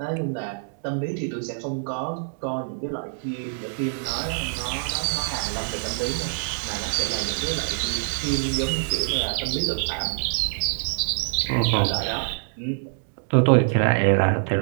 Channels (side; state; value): left; silent; digital silence